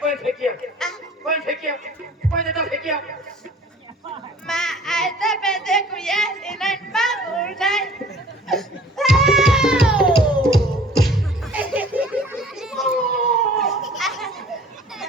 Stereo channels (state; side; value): normal; both; correlation 0.49